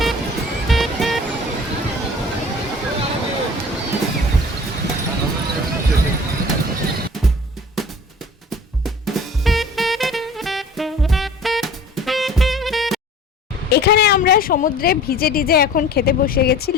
এখানে আমরা সমুদ্রে ভিজে টিজে এখন খেতে বসে গেছি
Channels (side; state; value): both; normal; correlation 0.44